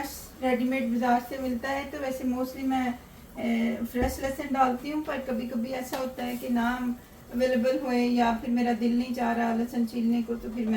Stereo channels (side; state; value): both; identical; correlation 1.00